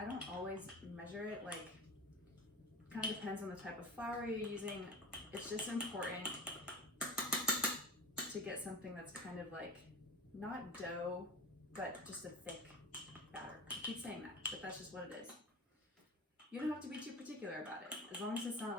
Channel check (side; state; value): both; normal; correlation 0.30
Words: don't always measure it, like, kind of depends on the type of flour you're using. It's just important to get something that's kind of like, not dough, but just a thick batter. I keep saying that, but that's just what it is. You don't have to be too particular about it. As long as it's